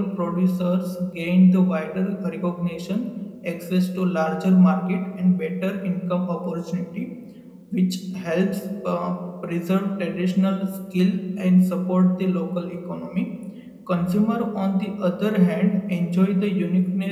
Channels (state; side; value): identical; both; correlation 1.00